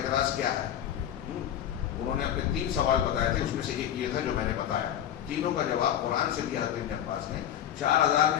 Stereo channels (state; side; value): quieter; right; 10.7 dB